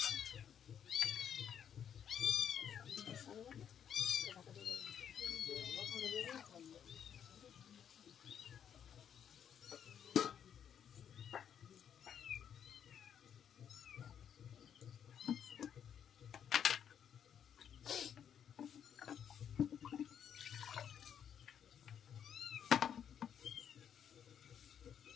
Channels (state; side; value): quieter; right; 8.7 dB